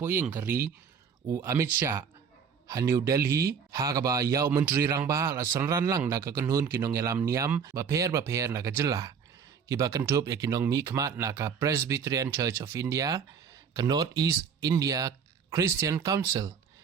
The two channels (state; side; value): quieter; left; 6.8 dB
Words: kari Amit Shah New Delhi hagaba ya Menteri Rangba la sanran lang na kakenhun nongialam Niam baper na kejela kiba kentup ya kinong mikmat na ka Presbyterian Church of India ka North East India Christian Council